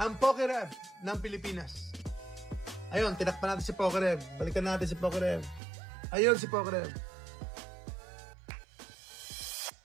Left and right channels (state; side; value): drops out; left; at 5.6 s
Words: Ang Pokerev ng Pilipinas. Ayun, tinakpan natin si Pokerev. Balikan natin si Pokerev. Ayun si Pokerev.